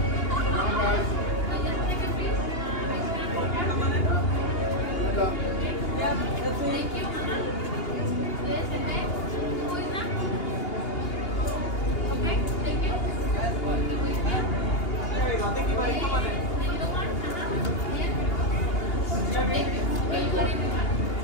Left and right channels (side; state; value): right; late; 2.8 ms